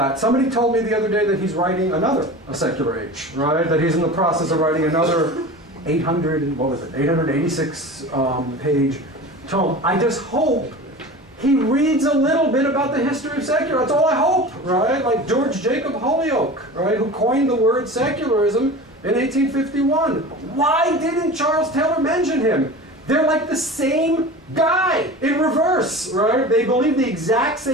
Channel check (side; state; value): both; normal; correlation 0.34